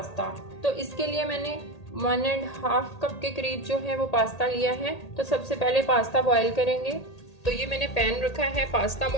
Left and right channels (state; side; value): late; right; 1.8 ms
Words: तो इसके लिए मैंने 1.5 कप के करीब जो है वो पास्ता लिया है। तो सबसे पहले पास्ता बॉईल करेंगे। तो ये मैंने पैन रखा है पास्ता